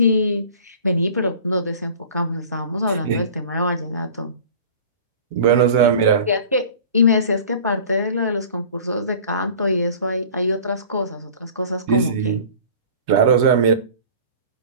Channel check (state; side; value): inverted; both; correlation -0.43